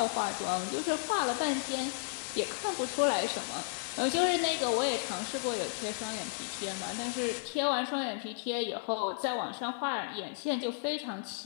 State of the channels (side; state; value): right; silent; digital silence